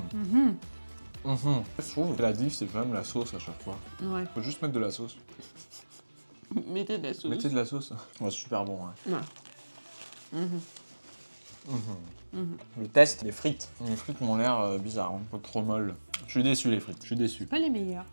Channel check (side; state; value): both; inverted; correlation -1.00